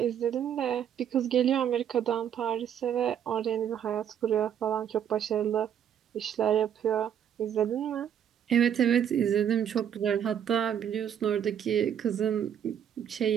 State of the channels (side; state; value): left; quieter; 9.2 dB